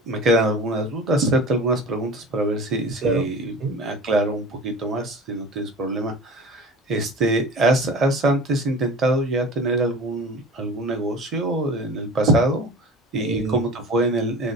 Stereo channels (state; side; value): normal; both; correlation 0.38